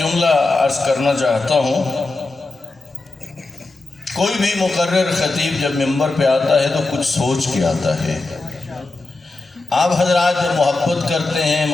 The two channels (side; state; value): right; quieter; 3.2 dB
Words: عرض کرنا چاہتا ہوں، کوئی بھی مقرر خطیب جب منبر پہ آتا ہے تو کچھ سوچ کے آتا ہے۔ آپ حضرات جب محبت کرتے ہیں،